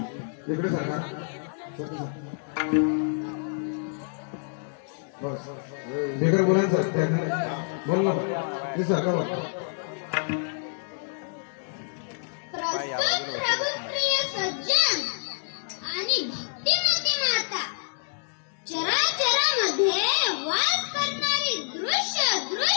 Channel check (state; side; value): silent; right; digital silence